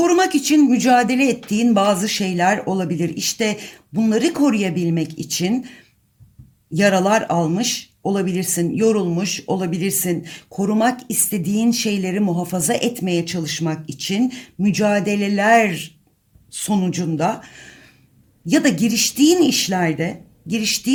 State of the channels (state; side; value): identical; both; correlation 1.00